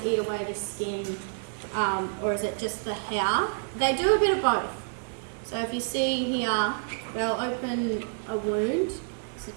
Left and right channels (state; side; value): silent; left; digital silence